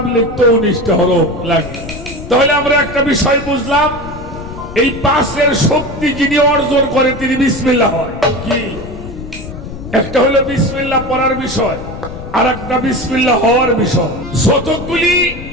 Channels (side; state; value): left; noise; rumble, 11 dB below the sound